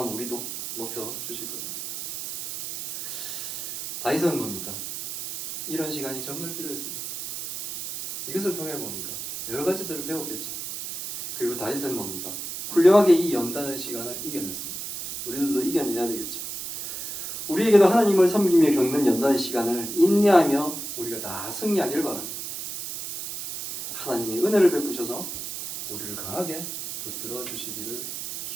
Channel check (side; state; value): right; noise; hiss, 7 dB below the sound